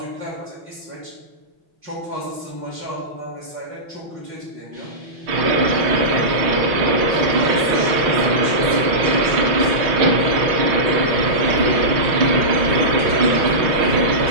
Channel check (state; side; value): late; left; 6.4 ms